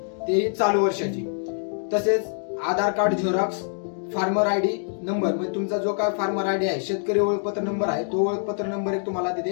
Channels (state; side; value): silent; right; digital silence